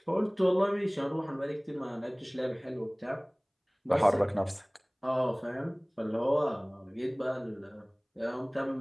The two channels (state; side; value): identical; both; correlation 1.00